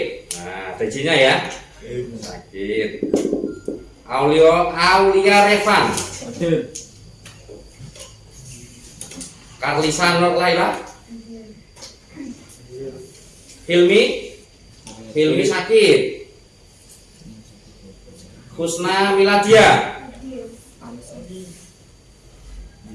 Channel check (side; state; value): both; identical; correlation 1.00